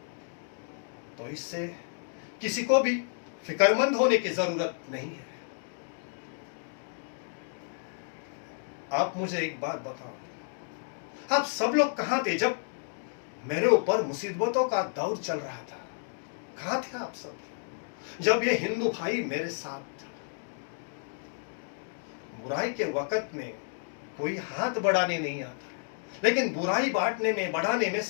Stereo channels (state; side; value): silent; right; digital silence